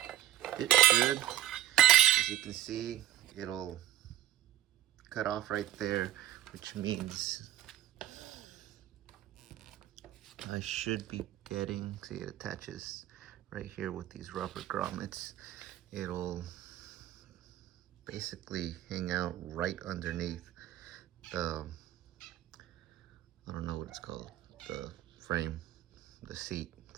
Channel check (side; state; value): left; quieter; 13.2 dB